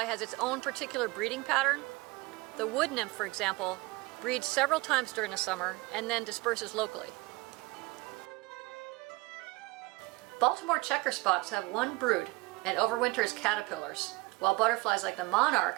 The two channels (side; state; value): left; quieter; 22.8 dB